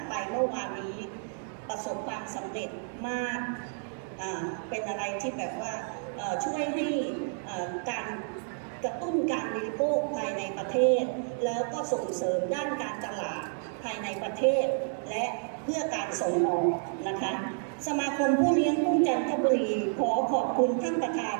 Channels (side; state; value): left; silent; 58 dB below the other